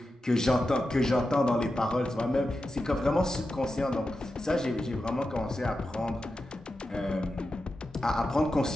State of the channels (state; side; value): normal; both; correlation 0.90